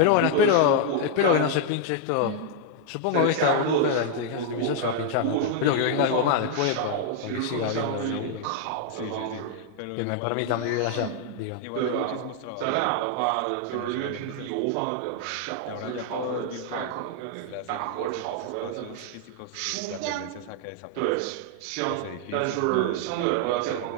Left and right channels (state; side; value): different; both; correlation 0.00